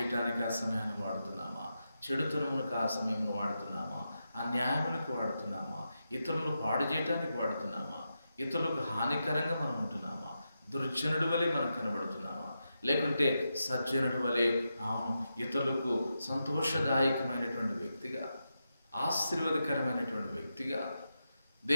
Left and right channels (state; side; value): inverted; both; correlation -0.88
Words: ఆ సమయాన్ని వాడుతున్నామా, చెడుతనములకు ఆ సమయంలో వాడుతున్నామా, అన్యాయములకు వాడుతున్నామా, ఇతరులను పాడు చేయటానికి వాడుతున్నామా, ఇతరులకు హానికరంగా మనం ఉంటున్నామా, దుర్జనుడి వలె మనం కనబడుతున్నామా, లేకుంటే సజ్జనుడి వలె ఇతరులకు సంతోషదాయకమైనటువంటి వ్యక్తిగా, ఆశీర్వాదకరమైనటువంటి వ్యక్తిగా,